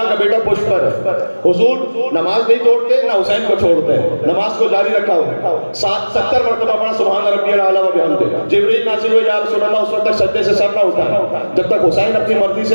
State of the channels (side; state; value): both; inverted; correlation -1.00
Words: کا بیٹا پشت پر ہے، حضور نماز نہیں توڑتے نہ حسین کو چھوڑتے ہیں، نماز کو جاری رکھا ہوا، 70 مرتبہ پڑھا سبحان ربی الاعلیٰ و بحمدہ۔ جبریل نازل ہوئے، یا رسول اللہ، اس وقت تک سجدے سے سر نہ اٹھا جب تک حسین اپنی مرضی